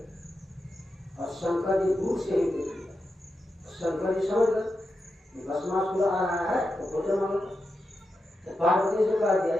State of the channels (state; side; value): normal; both; correlation 0.88